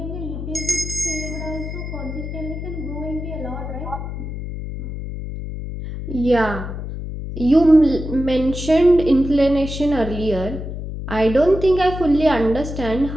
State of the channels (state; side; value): noise; left; hum, 7 dB below the sound